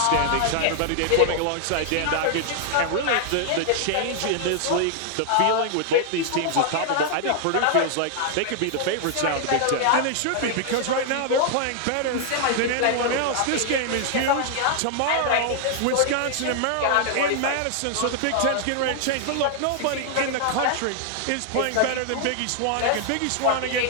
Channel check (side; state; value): both; different; correlation 0.00